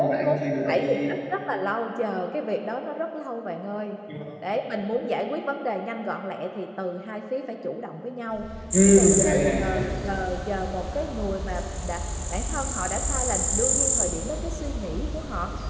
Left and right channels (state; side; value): identical; both; correlation 1.00